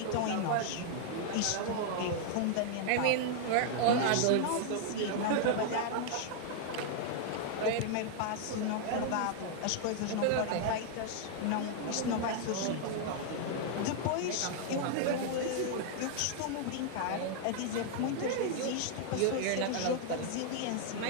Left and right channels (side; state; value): both; different; correlation 0.00